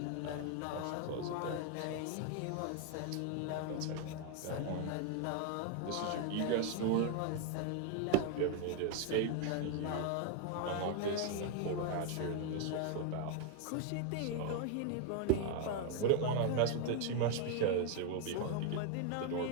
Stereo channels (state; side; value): different; both; correlation 0.01